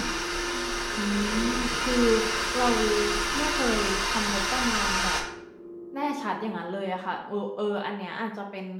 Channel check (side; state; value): both; identical; correlation 1.00